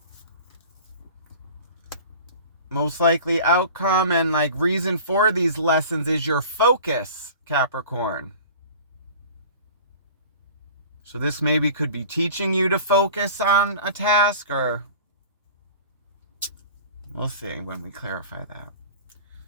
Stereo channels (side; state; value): both; inverted; correlation -0.42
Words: Most likely outcome and like reason for these lessons is your focus, Capricorn. So this maybe could be teaching you to focus on a task, or we'll see when we clarify that.